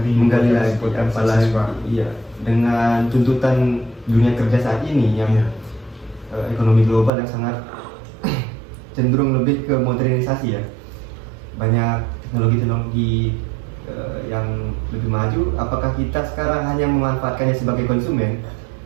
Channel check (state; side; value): drops out; left; at 7.1 s